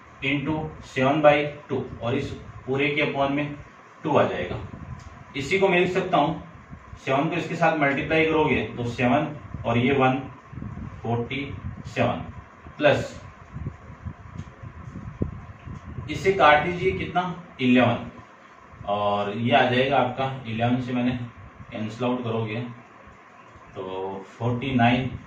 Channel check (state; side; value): identical; both; correlation 1.00